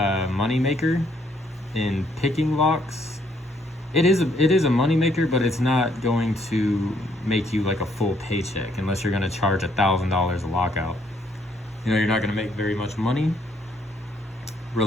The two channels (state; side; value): normal; both; correlation 0.69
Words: maker in picking locks. It is a money maker, but it's not going to make you like a full paycheck unless you're going to charge $1,000 a lockout. You're not going to make very much money.